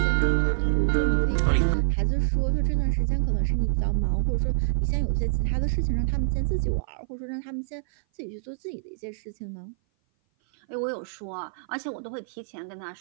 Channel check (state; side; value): silent; left; 56 dB below the other